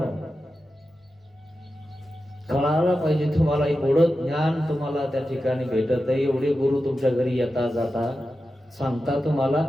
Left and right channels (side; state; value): both; normal; correlation 0.92